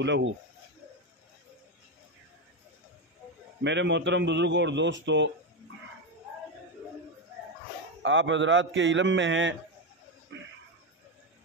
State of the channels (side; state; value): both; normal; correlation 0.10